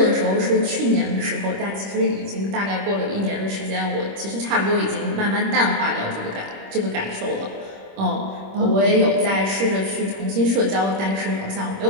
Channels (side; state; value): left; late; 26 ms